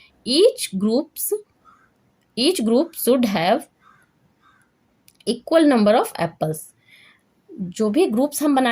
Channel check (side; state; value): both; identical; correlation 1.00